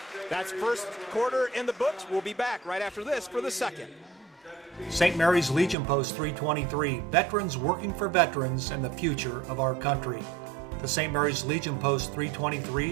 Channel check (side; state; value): left; drops out; at 5.8 s